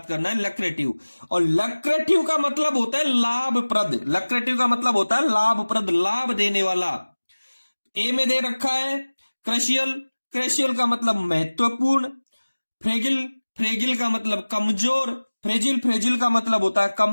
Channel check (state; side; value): inverted; both; correlation -1.00